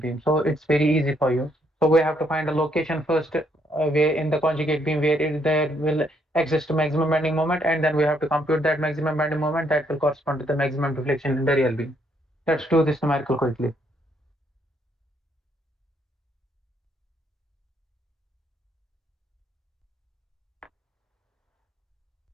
beam. So it's very easy for you. So we have to find a location first where in the conjugate beam where there will exist maximum bending moment, and then we have to compute that maximum bending moment that will correspond to the maximum deflection in the real beam. Let's do this numerical quickly.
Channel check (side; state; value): both; normal; correlation 0.71